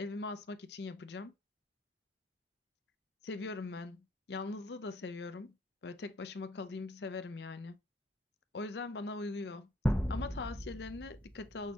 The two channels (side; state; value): both; normal; correlation 0.65